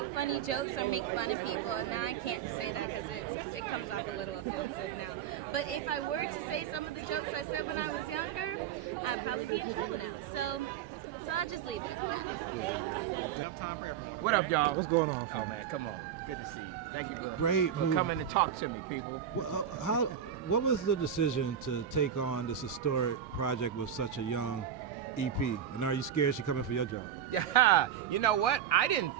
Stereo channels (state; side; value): quieter; left; 9.0 dB